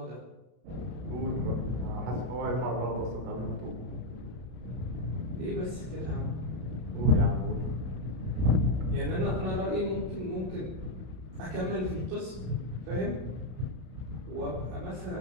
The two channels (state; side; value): late; left; 32 ms